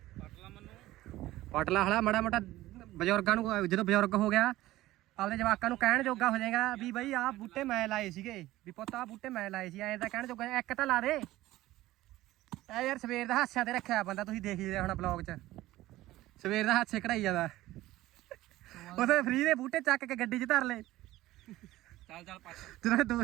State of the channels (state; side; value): quieter; left; 16.4 dB